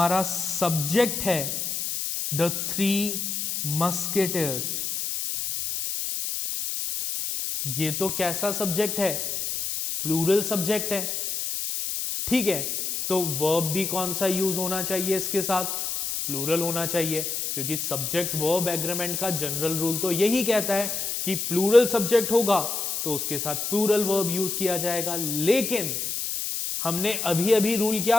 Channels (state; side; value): noise; left; hiss, 2 dB below the sound